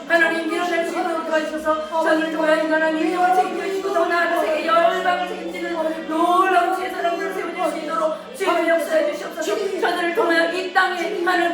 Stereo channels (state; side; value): identical; both; correlation 1.00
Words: 하나님 일어날 수 있도록 도와주셔서 저를 통하여 하나님 인정을 책임져 주시고 더 나아가 세계 열방을 책임지는 놀라운 주의 사람들을 세워줄 수 있도록 주의 역사해 주시옵소서. 저들을 통하여 이 땅에 하나님